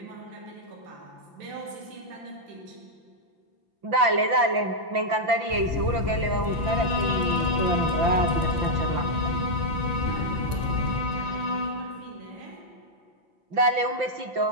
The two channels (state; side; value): late; left; 5.9 ms